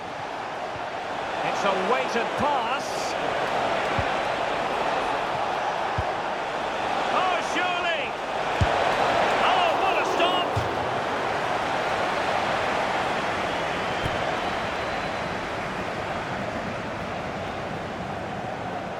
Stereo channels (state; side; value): identical; both; correlation 1.00